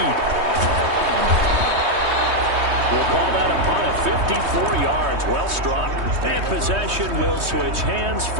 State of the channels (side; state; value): left; late; 3.2 ms